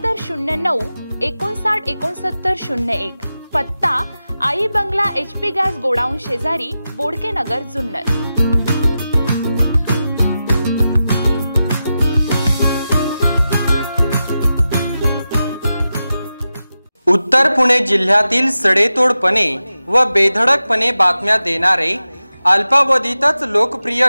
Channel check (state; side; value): inverted; both; correlation -0.92